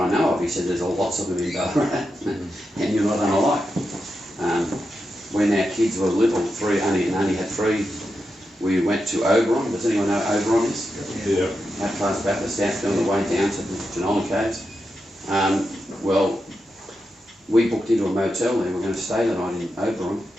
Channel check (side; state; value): both; normal; correlation 0.88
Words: know of." He said, "There's lots of them in Ballarat, and you're not unlike." When our kids were little, only had 3, we went to Oberon. Does anyone know where Oberon is? Yeah. Outcast Baptist, on the way down to the Genola Caves. Well, we booked into a motel there. We were going to stay the night in Oberon.